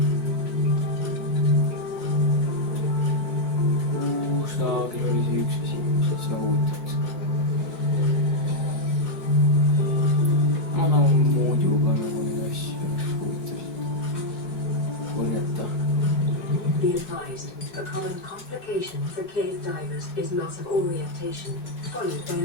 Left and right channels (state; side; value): late; right; 5.7 ms